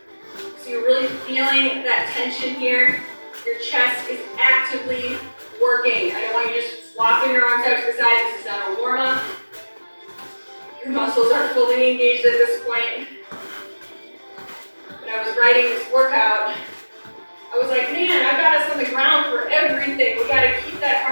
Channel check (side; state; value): both; inverted; correlation -1.00